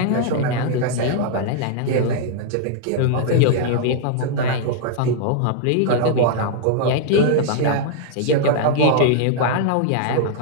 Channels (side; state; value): both; different; correlation -0.01